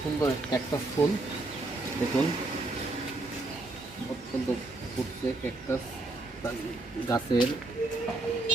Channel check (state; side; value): quieter; left; 3.1 dB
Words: সুন্দর ক্যাকটাস ফুল, দেখুন অত্যন্ত ফুটছে ক্যাকটাস গাছের,